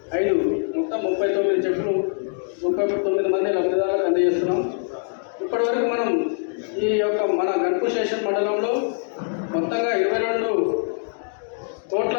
5 మొత్తం 39 చెక్కులు 39 మంది లబ్ధిదారులకు అందజేస్తున్నాం. ఇప్పటివరకు మనం ఈ యొక్క మన గన్పూర్ స్టేషన్ మండలంలో మొత్తంగా 22 కోట్ల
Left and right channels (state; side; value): silent; right; 63 dB below the other